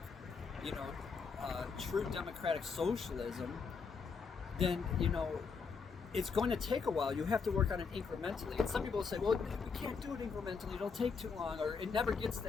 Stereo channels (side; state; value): right; quieter; 5.3 dB